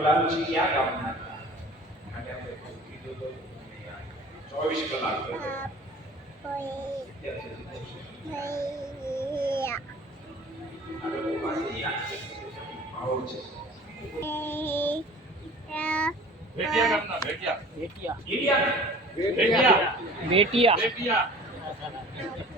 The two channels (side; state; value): both; normal; correlation 0.45